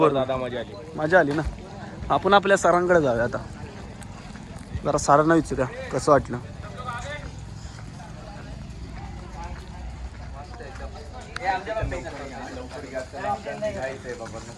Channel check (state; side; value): identical; both; correlation 1.00